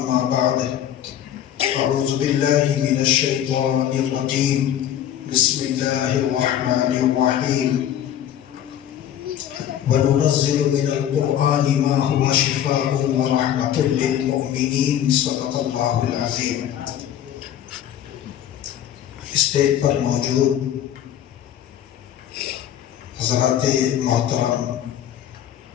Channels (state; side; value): quieter; right; 10.6 dB